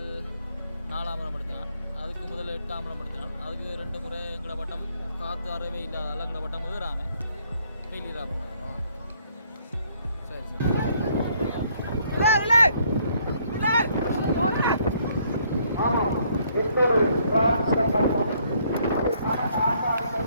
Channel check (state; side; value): inverted; both; correlation -0.67